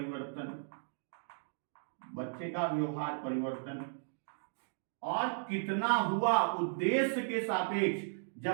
बच्चे का व्यवहार परिवर्तन। और कितना हुआ उद्देश्य के सापेक्ष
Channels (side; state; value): left; silent; digital silence